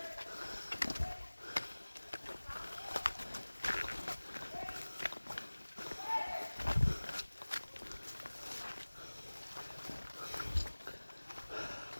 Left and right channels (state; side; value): inverted; both; correlation -1.00